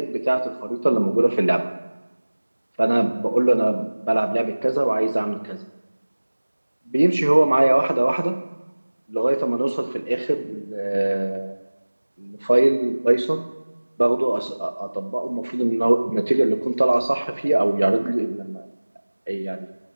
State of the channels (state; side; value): inverted; both; correlation -1.00